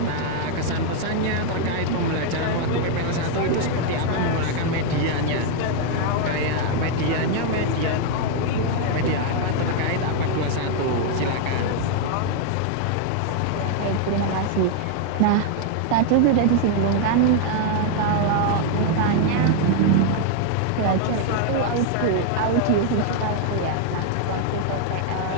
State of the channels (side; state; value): both; different; correlation 0.00